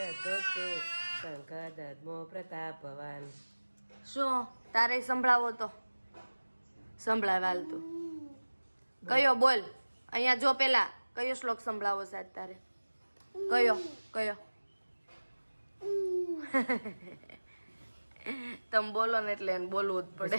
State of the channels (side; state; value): both; inverted; correlation -1.00